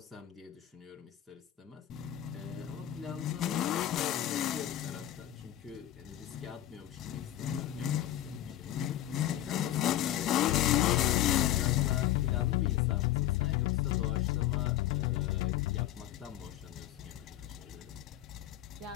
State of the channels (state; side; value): quieter; right; 12.8 dB